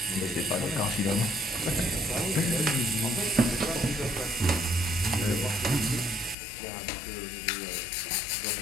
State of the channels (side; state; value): right; drops out; at 6.4 s